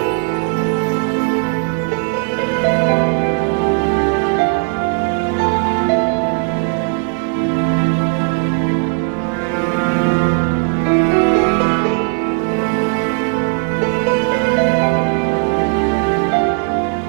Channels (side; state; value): left; quieter; 35.8 dB